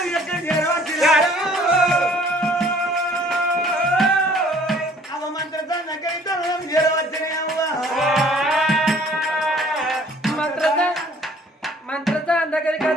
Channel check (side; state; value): both; normal; correlation 0.55